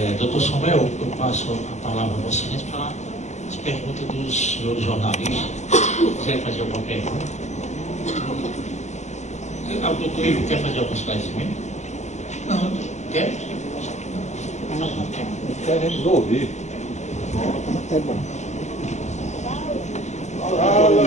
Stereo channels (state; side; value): late; right; 0.33 ms